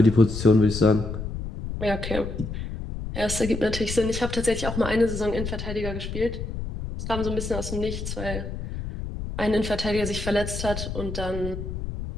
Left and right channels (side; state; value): left; noise; rumble, 6 dB below the sound